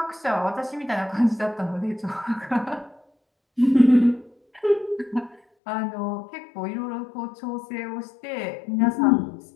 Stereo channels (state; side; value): drops out; right; at 5.4 s